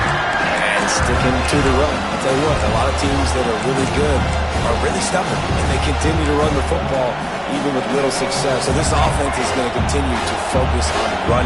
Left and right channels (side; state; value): both; identical; correlation 1.00